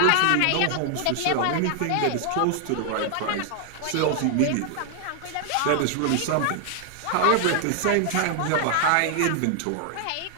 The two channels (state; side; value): different; both; correlation 0.00